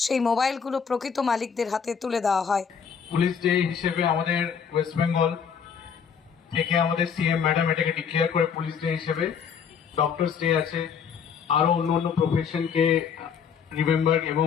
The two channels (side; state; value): right; quieter; 6.9 dB